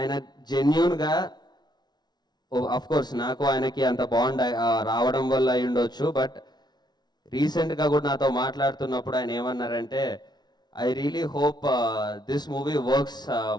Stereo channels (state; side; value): late; right; 0.20 ms